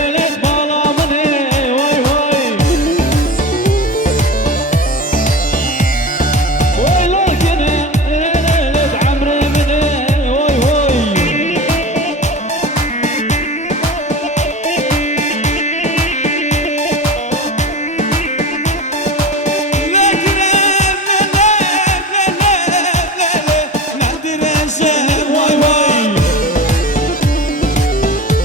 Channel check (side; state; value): both; normal; correlation 0.31